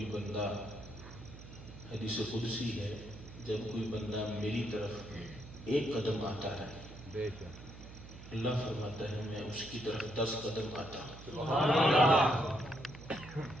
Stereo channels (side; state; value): right; noise; hum, 15 dB below the sound